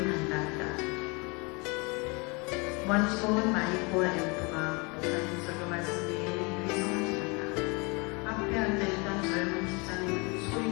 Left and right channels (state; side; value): quieter; right; 29.5 dB